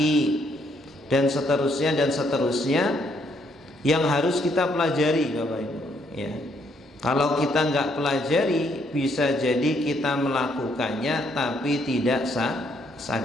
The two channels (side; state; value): both; normal; correlation 0.71